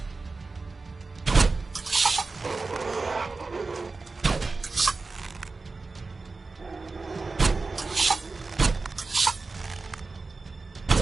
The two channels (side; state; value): left; quieter; 3.9 dB